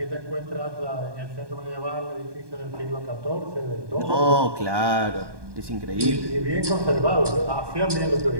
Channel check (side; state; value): left; late; 1.2 ms